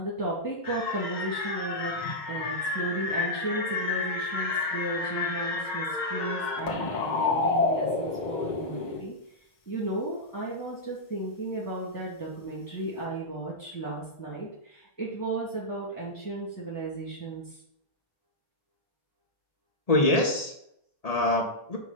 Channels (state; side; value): late; right; 1.8 ms